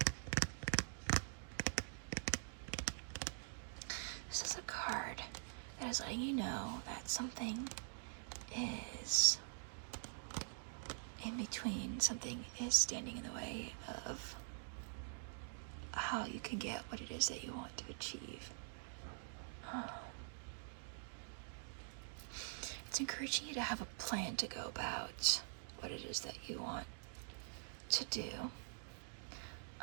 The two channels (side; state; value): left; silent; digital silence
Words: This is a card that is letting you know that something is in between, something is standing in the way of how you can get what it is that you want to achieve. It's encouraging you to have a plan to go about what it is that you want to do.